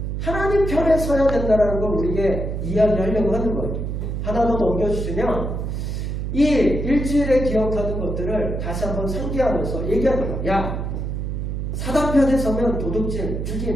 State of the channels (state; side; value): noise; right; hum, 3 dB below the sound